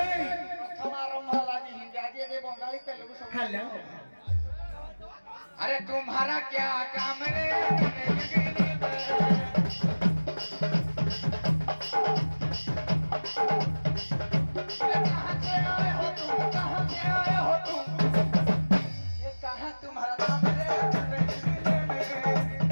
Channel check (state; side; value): inverted; both; correlation -1.00